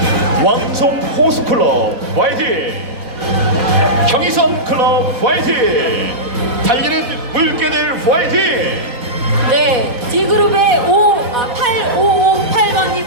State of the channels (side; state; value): left; late; 4.1 ms